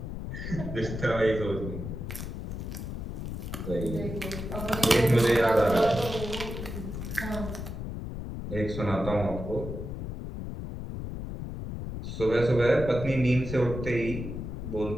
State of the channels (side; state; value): left; noise; rumble, 6 dB below the sound